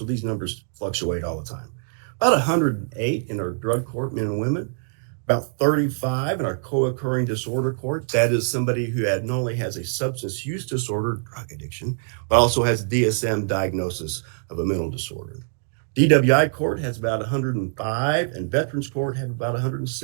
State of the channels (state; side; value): silent; left; digital silence